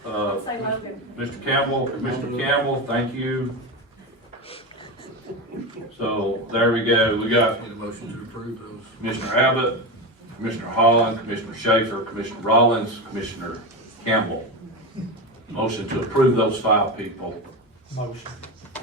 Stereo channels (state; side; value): normal; both; correlation 0.19